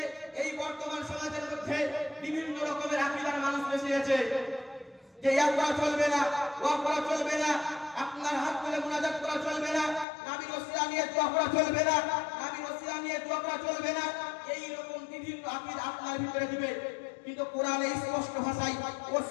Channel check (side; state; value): right; drops out; at 10.1 s